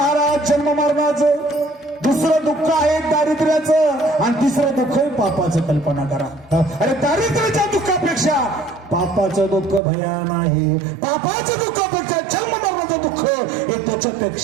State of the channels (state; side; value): drops out; left; at 9.8 s